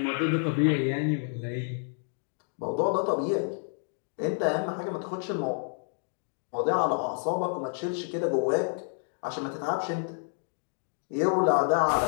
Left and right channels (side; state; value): right; silent; 57 dB below the other